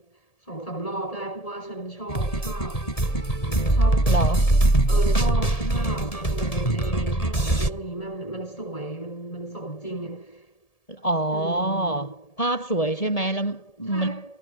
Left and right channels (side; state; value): right; late; 1.7 ms